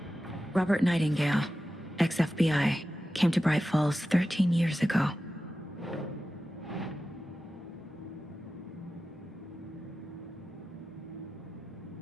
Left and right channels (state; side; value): normal; both; correlation 0.93